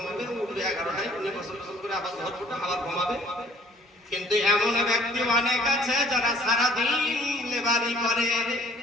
উঠবে 11টায়, উনি গোসল করে আবার জোহর পড়ে আবার ঘুমাবে। কিন্তু এমন ব্যক্তি অনেক আছে যারা সারাদিন লেবারি করে,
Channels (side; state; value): both; normal; correlation 0.56